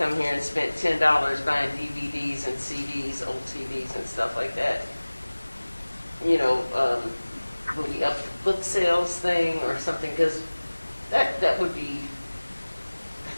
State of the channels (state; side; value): inverted; both; correlation -1.00